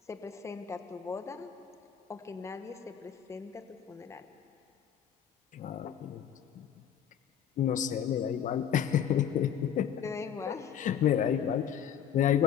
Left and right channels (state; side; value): quieter; right; 8.9 dB